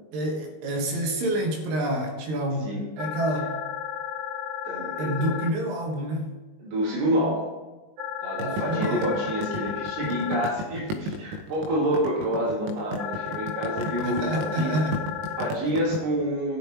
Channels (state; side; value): late; left; 19 ms